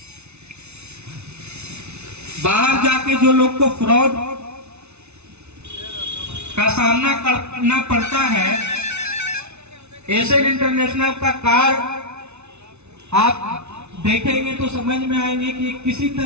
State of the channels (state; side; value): late; left; 0.81 ms